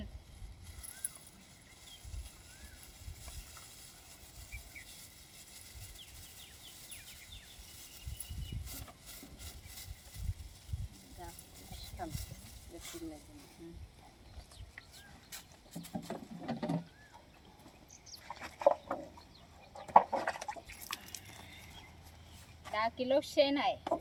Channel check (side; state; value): both; identical; correlation 1.00